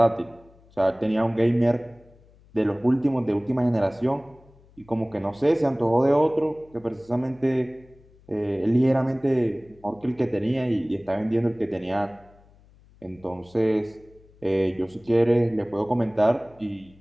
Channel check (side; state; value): left; noise; hum, 28 dB below the sound